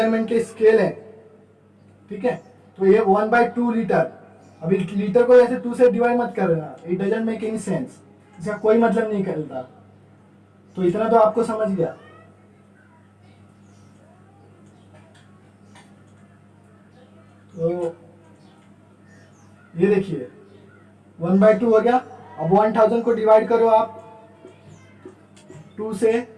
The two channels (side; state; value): both; identical; correlation 1.00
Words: के स्केल है, ठीक है। तो ये 1/2 लीटर। अभी लीटर को ऐसे 2 से डिवाइड मत कर देना, it doesn't make any sense, इसका कोई मतलब नहीं करता। तो इतना तो आपको समझ गया। तो ये देखिए 1/2 हो गया। अब 1000 को डिवाइड करो आप 2 से,